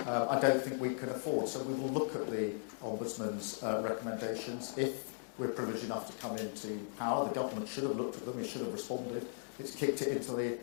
I don't think we can afford. So we will look at the Ombudsman's recommendations. If we're privileged enough to come into power, the government should have looked at them, it should have responded. It's kicked it into the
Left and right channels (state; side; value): silent; right; digital silence